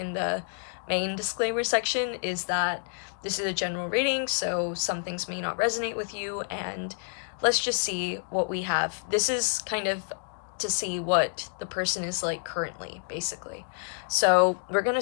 the main disclaimer section is that this is a general reading, so some things may not resonate with you, and let's just see what we have. This is kind of to see what the person is like currently, basically. So we're going to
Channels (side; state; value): right; silent; digital silence